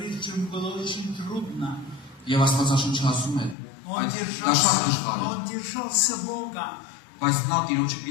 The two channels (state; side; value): drops out; right; at 3.6 s